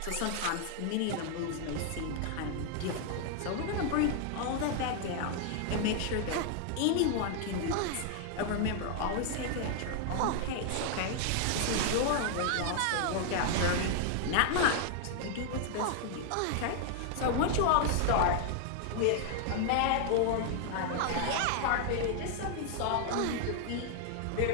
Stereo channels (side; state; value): both; different; correlation 0.00